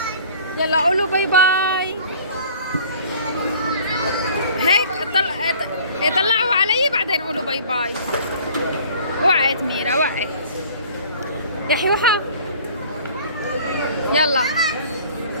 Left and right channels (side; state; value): both; inverted; correlation -0.50